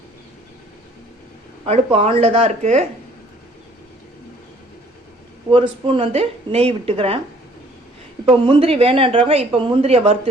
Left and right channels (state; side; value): normal; both; correlation 0.58